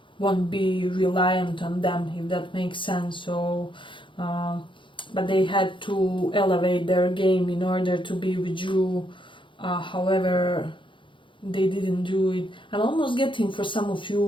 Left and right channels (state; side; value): late; right; 0.24 ms